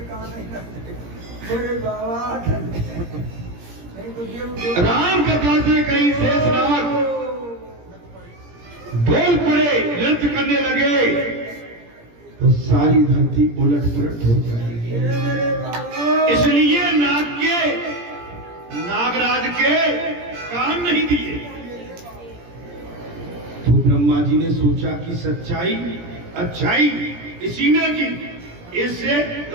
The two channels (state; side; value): late; left; 17 ms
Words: राम कथा से कहीं शेषनाग डोल पड़े, नृत्य करने लगे तो सारी धरती उलट पुलट हो जाएगी। इसलिए नागराज के कान नहीं दिए। तो ब्रह्मा जी ने सोचा कि सच्चाई अच्छाई इसी में की, इससे